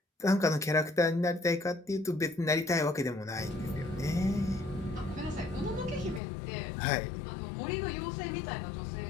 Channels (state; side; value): drops out; right; at 6.2 s